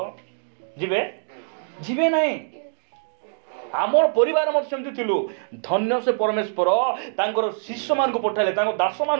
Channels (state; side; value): silent; left; digital silence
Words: ଯିବେ? ଯିବେ ନାହିଁ। ଆମର ପରିବାର ମଧ୍ୟ ସେମିତି ଥିଲୁ। ଧନ୍ୟ ସେ ପରମେଶ୍ୱର ତାଙ୍କର ଶିଷ୍ୟ ମାନଙ୍କୁ ପଠାଇଲେ, ତାଙ୍କ ଦାସ